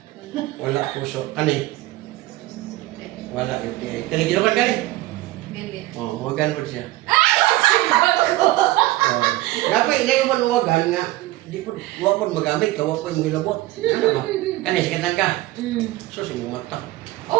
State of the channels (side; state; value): left; quieter; 17.5 dB